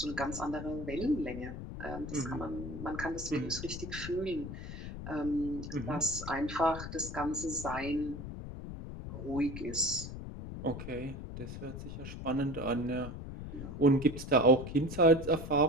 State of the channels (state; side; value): noise; left; rumble, 8 dB below the sound